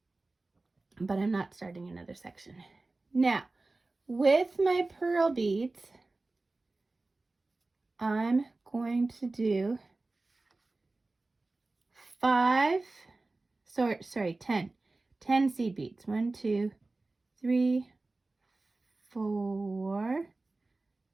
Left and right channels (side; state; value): left; quieter; 3.2 dB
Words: but I'm not starting another section. Now, with my pearl beads, I'm going to do 10 seed beads. 1, 2, 3, 4,